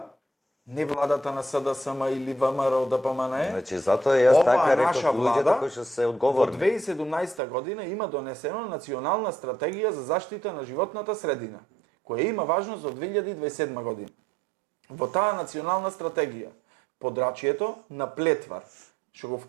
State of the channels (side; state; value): left; drops out; at 7.4 s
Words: не владата на СДСМ или ВМРО ДПМНЕ, значи затоа јас така наша реков луѓето кои што се во одговорни. 2017 година има донесено национална стратегија за заштита на животната средина, која има важност од 2027 година. Во таа национална стратегија, подрачјето на Плетвар, што го